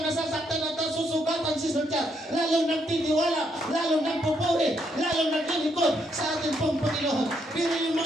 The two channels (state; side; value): normal; both; correlation 0.75